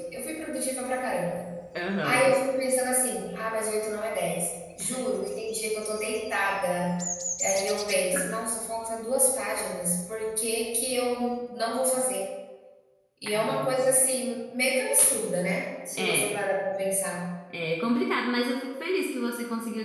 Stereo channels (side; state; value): both; identical; correlation 1.00